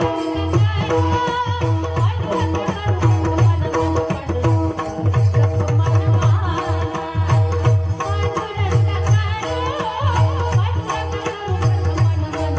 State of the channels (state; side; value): identical; both; correlation 1.00